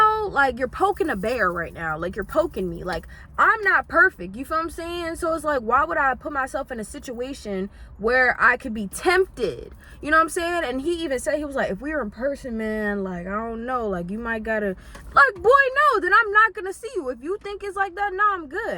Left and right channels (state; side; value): identical; both; correlation 1.00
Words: like, you're poking a bear right now. Like, you're poking me. Like, I'm not perfect. You feel what I'm saying? So it's like, why would I put myself in a situation where I could be tempted? You know what I'm saying? And he even said, he was like, if we were in person, man, like, I don't know, like, you might gotta, like, boy, no, then I'm not gonna see you. If you think it's like that, nah, I'm